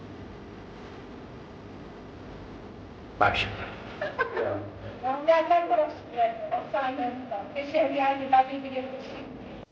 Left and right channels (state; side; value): identical; both; correlation 1.00